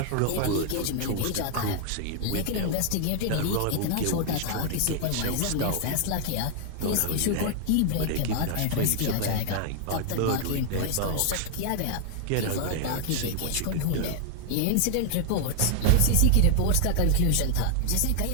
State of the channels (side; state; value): both; different; correlation 0.00